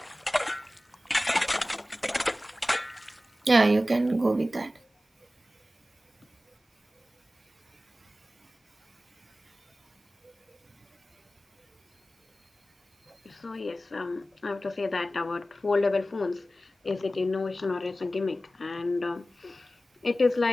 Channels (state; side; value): normal; both; correlation 0.95